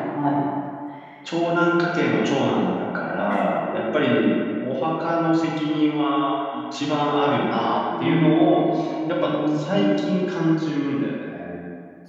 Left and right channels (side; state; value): both; identical; correlation 1.00